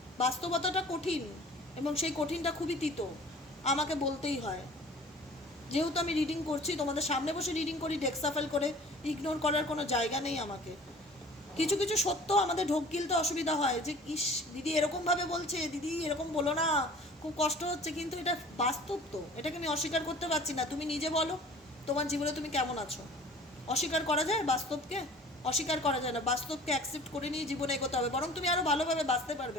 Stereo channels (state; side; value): normal; both; correlation 0.47